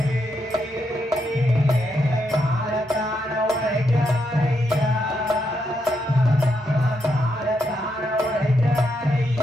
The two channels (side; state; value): both; normal; correlation 0.80